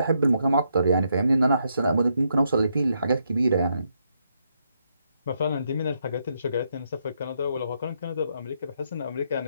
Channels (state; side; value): inverted; both; correlation -0.78